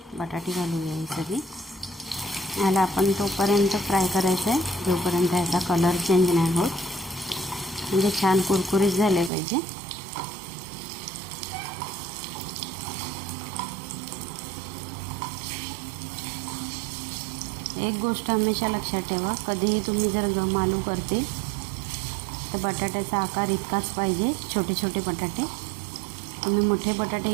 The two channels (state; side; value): drops out; left; at 9.3 s